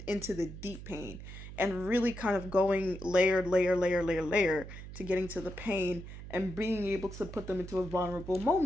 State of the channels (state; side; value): noise; right; hum, 12 dB below the sound